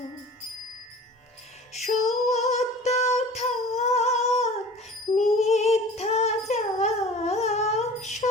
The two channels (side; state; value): both; normal; correlation 0.41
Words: সত্য থাক মিথ্যা যাক,